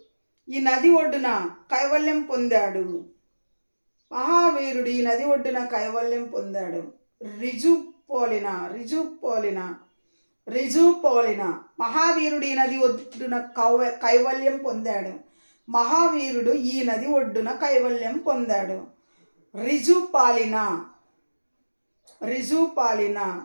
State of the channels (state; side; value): inverted; both; correlation -1.00